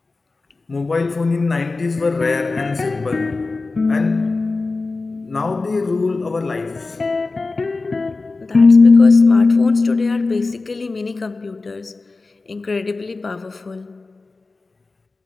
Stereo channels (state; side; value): quieter; right; 3.7 dB